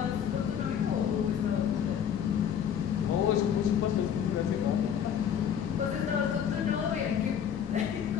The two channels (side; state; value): right; quieter; 8.7 dB